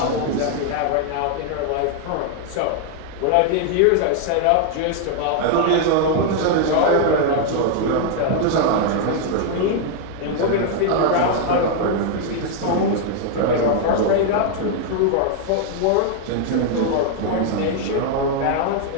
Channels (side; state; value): both; different; correlation 0.00